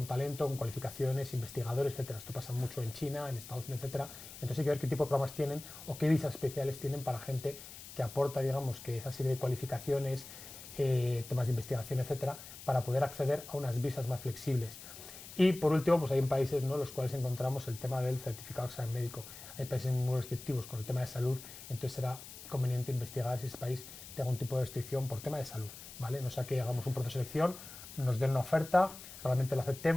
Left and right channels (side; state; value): left; noise; hiss, 14 dB below the sound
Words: talento, con cualificaciones, investigadores, etcétera. Esto pasa mucho en China, en Estados Unidos, etcétera. Entonces hay que ver qué tipo de programas tienen o qué visas especiales tienen para gente que aporta, digamos, que esa serie de cualificaciones, temas de investigación, etcétera, para poder acceder a unas visas más flexibles. Y por último, pues hay países, ¿no? Los cuales encontramos el tema del certificado de examen médico. Hay países muy restrictivos con el tema de salud, entonces será conveniente investigar si ese país tiene algún tipo de restricción por tema de salud, ¿vale? No sea que hagamos un proceso de selección, nos den una oferta, realmente la